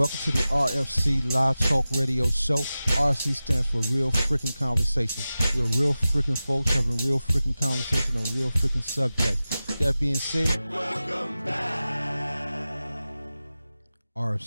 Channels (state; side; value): inverted; both; correlation -0.95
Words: to the RFC Live Talk Radio Show. RFC stands for Real Freaking Conversation. We're real freaking folks having real freaking conversation on real freaking subjects. That being said, welcome back.